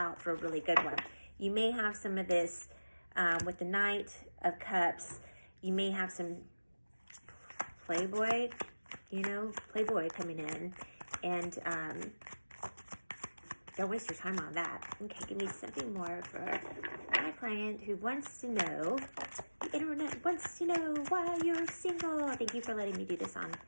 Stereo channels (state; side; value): inverted; both; correlation -1.00